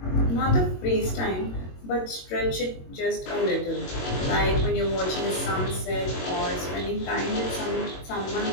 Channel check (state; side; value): late; right; 22 ms